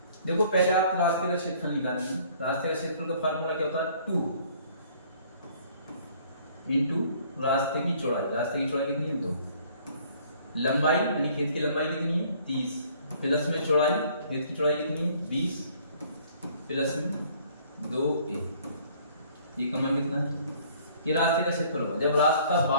देखो पहले आप रास्ते का क्षेत्रफल निकालेंगे। रास्ते का क्षेत्रफल का फार्मूला क्या होता है? 2 इंटू रास्ते की चौड़ाई। रास्ते की चौड़ाई कितनी है? 2। लंबाई यानी खेत की लंबाई कितनी है? 30 प्लस में चौड़ाई, खेत की चौड़ाई कितनी है? 20 प्लस में 2a। ये का मान कितना है? ये रास्ते का क्षेत्रफल होगा। जब रास्ता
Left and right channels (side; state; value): both; inverted; correlation -0.58